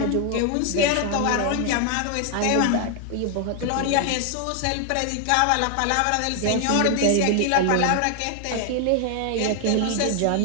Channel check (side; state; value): both; different; correlation 0.00